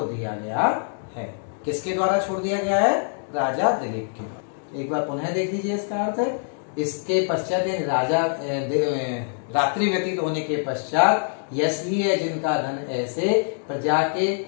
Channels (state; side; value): silent; right; 62 dB below the other